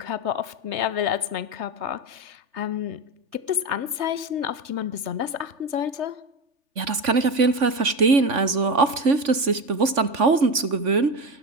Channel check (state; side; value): late; left; 3.5 ms